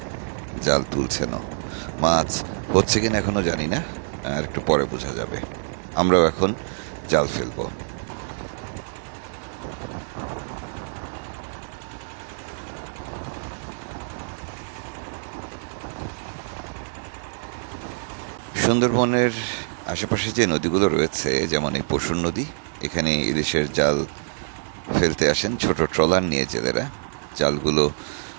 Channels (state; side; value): silent; left; 61 dB below the other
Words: জাল তুলছেন। মাছ হচ্ছে কিনা এখনো জানি না, আর একটু পরে বোঝা যাবে। আমরাও এখন জাল ফেলবো। সুন্দরবনের আশেপাশে যে নদীগুলো রয়েছে, যেমন এই পশুর নদী, এখানে ইলিশের জাল ফেলতে আসেন ছোট ট্রলার নিয়ে জেলেরা। জালগুলো